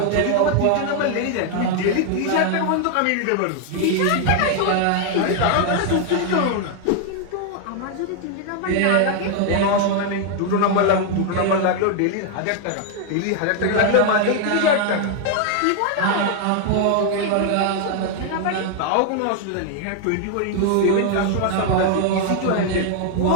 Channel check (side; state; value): both; different; correlation 0.00